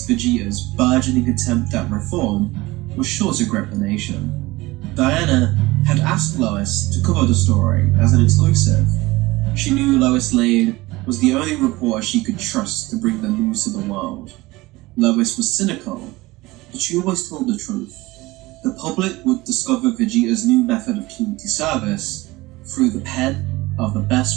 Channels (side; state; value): left; quieter; 20.4 dB